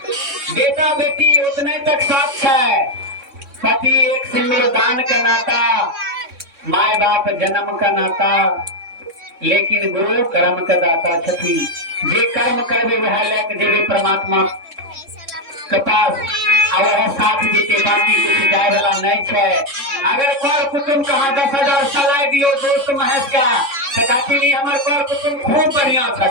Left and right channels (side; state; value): left; late; 3.6 ms